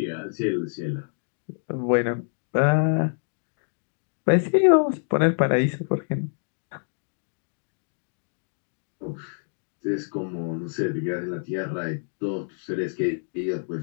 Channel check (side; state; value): right; silent; digital silence